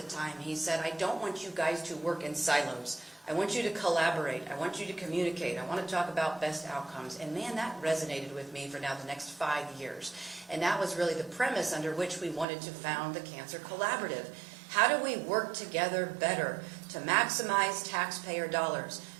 time. He said, I don't want you guys to work in silos. I want you to collaborate. I want you to communicate. I want to talk about best outcomes. And man, that resonated with me for now the next 5 years. And that was really the premise under which we wanted to found the Cancer Collaborative. How do we work together better to maximize taxpayer dollars,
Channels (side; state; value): left; drops out; at 12.5 s